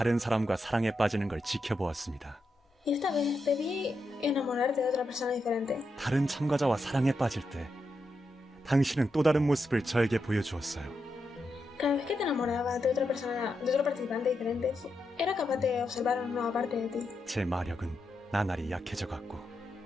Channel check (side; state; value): both; normal; correlation 0.85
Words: 사람과 사랑에 빠지는 걸 지켜보았습니다. Y esta vez te vi enamorarte de otra persona diferente. 다른 참가자와 사랑에 빠질 때 당신은 또 다른 모습을 저에게 보여주었어요. Cada vez que te enamorabas de otra persona, de otro participante diferente, era capaz de observar una nueva parte de ti. 제 마력은 나날이 약해져 갔고, 당신은 제 마력을 더 강하게 만들었어요.